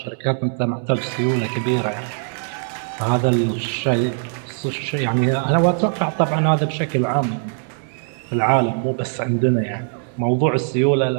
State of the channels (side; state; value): left; silent; digital silence